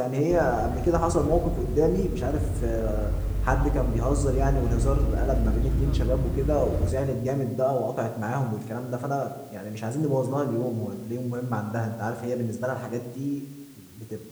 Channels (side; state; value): both; identical; correlation 1.00